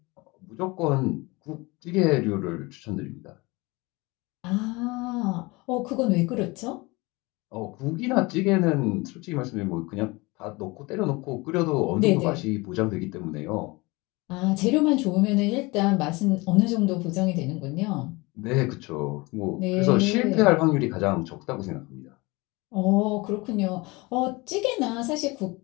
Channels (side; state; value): right; quieter; 24.3 dB